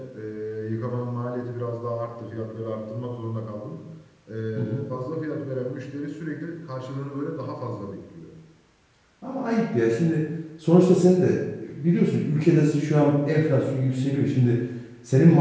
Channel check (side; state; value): both; identical; correlation 1.00